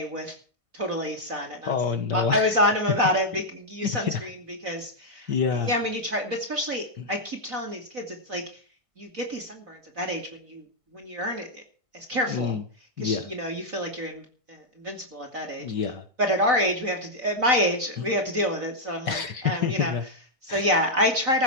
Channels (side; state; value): left; late; 1.5 ms